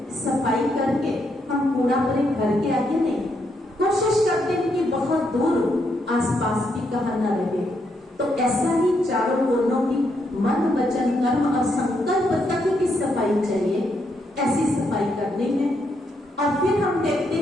सफाई करके हम कूड़ा अपने घर के आगे नहीं, कोशिश करते हैं कि बहुत दूर आसपास भी कहाँ न रहे। तो ऐसा ही चारों कोनों की मन वचन कर्म और संकल्प तक की सफाई चाहिए, ऐसी सफाई करनी है। और फिर हम देखते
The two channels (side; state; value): both; normal; correlation 0.78